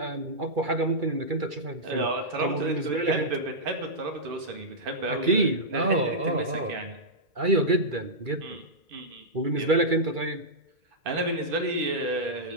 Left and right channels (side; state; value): left; late; 2.3 ms